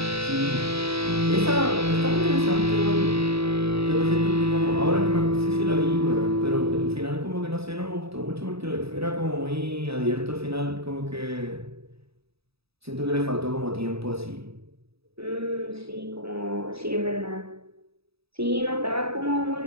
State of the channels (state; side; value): late; left; 0.78 ms